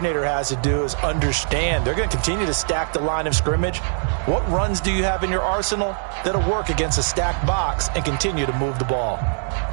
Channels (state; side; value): silent; left; digital silence